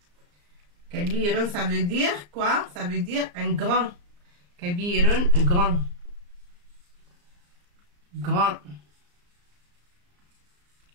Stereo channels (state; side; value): late; left; 34 ms